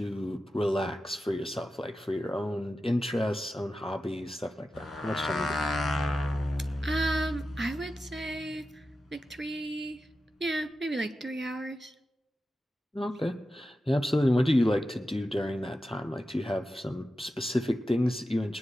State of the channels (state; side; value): normal; both; correlation 0.91